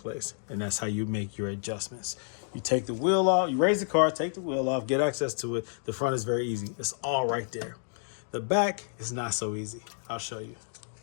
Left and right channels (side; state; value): right; silent; digital silence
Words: And that's how you make your adjustments. You take the wheel off, you raise the car, take the wheel off, get access to it. The front is very easy. It's all right there. The back is not so easy. I'll show you.